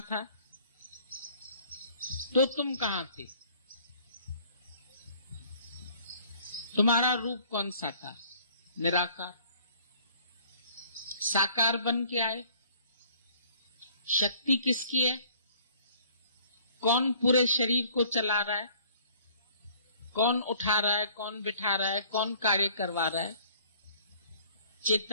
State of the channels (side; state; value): both; inverted; correlation -0.56